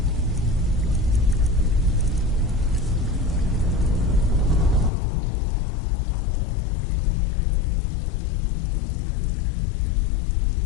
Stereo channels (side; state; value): right; drops out; at 4.9 s